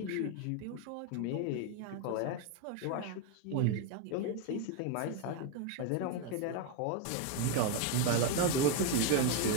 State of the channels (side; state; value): both; different; correlation 0.01